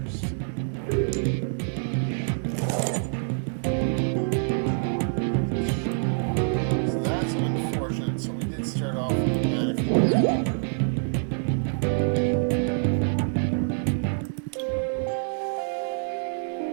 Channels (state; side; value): silent; left; 61 dB below the other